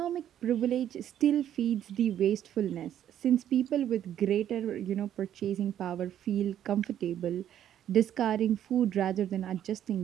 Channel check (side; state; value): left; quieter; 10.7 dB